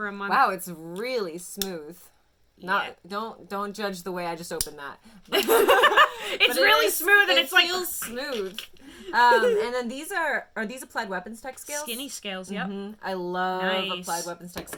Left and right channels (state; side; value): identical; both; correlation 1.00